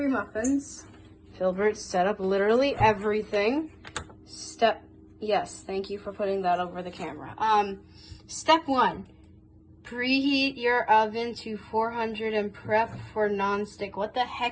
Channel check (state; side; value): identical; both; correlation 1.00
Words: muffins. Filbert set up literally everything. Yes, thank you for putting that over the camera. Step 1, preheat your oven to 400 and prep for non-stick. What the